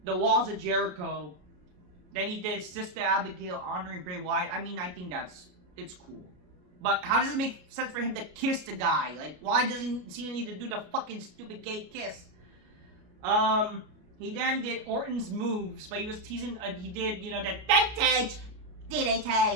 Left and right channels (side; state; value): left; late; 33 ms